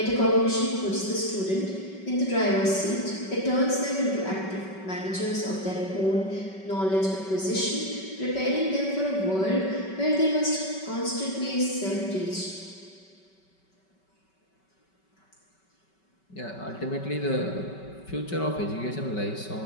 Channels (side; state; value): right; late; 5.3 ms